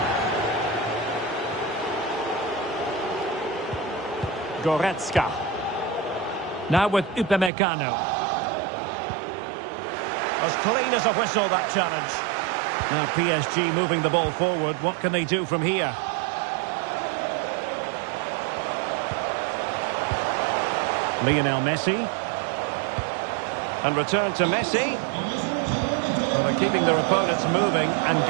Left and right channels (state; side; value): drops out; left; at 7.5 s